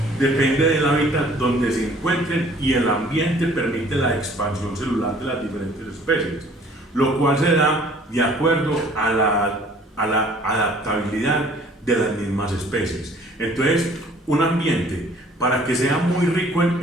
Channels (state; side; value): normal; both; correlation 0.55